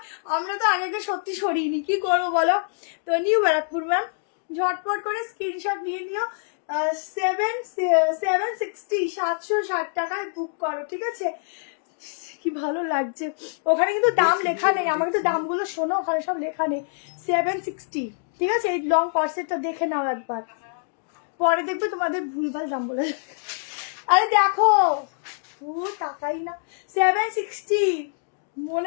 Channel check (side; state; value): right; silent; digital silence